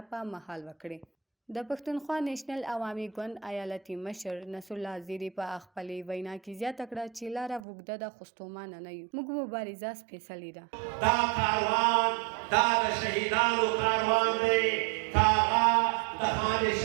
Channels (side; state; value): left; drops out; at 7.7 s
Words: په مهال وکړې. د پښتونخوا نیشنل عوامي ګوند ایالتي مشر نصر الله زیري په خپلې وینا کې زیاته کړه چې لاره اوږده ده خو ستومانه نه یو. موږ مبارزه سپېڅلې ده. دا کاروان دا د شهیدانو کاروان دی. هغه د خان